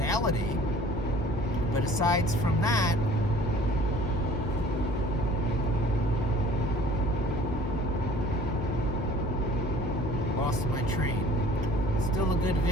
But aside from that, lost my train. Still a good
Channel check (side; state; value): left; noise; hum, 5 dB below the sound